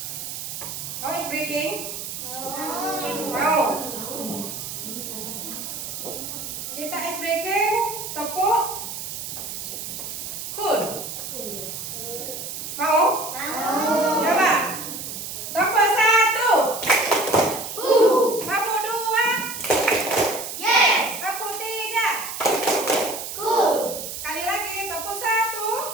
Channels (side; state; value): right; noise; hiss, 7 dB below the sound